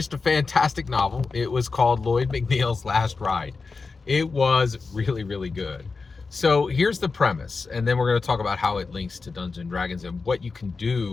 a fantastic novel. It was called Lloyd McNeils' Last Ride. It was really, really good. So here's the premise, and then we're going to talk about how it links to Dungeons and Dragons and what you can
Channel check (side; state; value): right; quieter; 4.4 dB